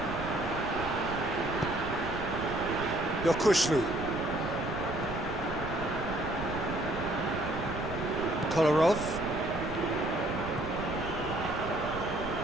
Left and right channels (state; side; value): noise; right; rumble, 9 dB below the sound